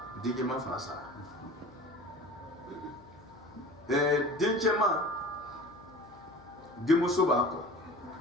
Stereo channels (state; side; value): noise; left; hum, 25 dB below the sound